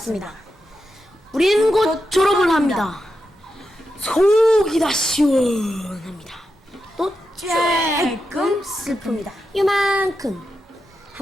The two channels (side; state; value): both; normal; correlation 0.88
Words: 우리는 곧 졸업을 합니다. 속이 다 시원합니다. 또 조금 슬픕니다. 요만큼.